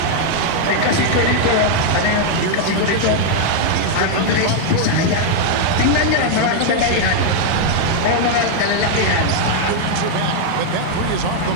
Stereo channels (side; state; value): both; different; correlation -0.01